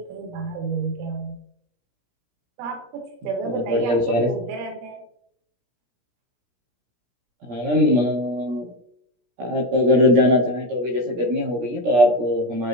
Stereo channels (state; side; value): late; left; 17 ms